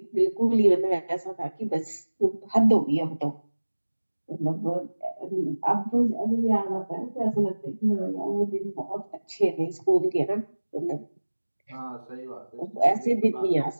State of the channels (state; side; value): inverted; both; correlation -1.00